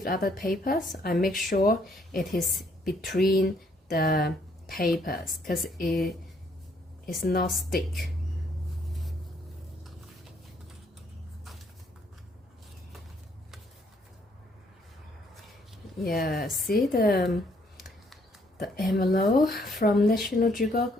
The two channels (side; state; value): both; normal; correlation 0.68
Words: other papers, I make sure it is between the papers because it is not stick. Yeah, see the envelope from National